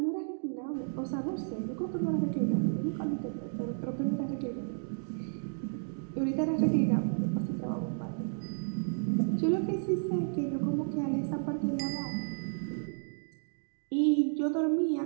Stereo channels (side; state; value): left; silent; digital silence